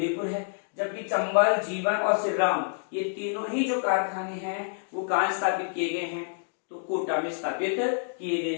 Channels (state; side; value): silent; right; digital silence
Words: है। जबकि चंबल, जीवन और श्री राम ये तीनों ही जो कारखाने हैं वो कहाँ स्थापित किए गए हैं? तो कोटा में स्थापित किए गए